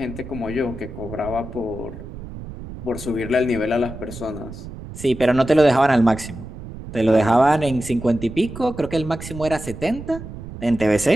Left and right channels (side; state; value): right; noise; rumble, 12 dB below the sound